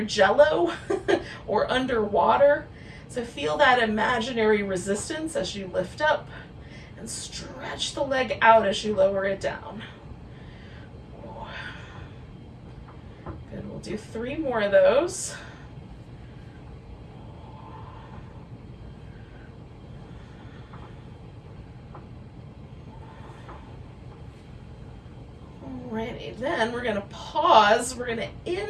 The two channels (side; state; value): both; identical; correlation 1.00